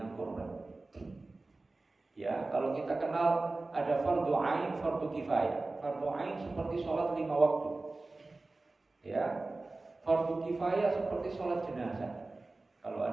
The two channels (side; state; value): left; quieter; 3.3 dB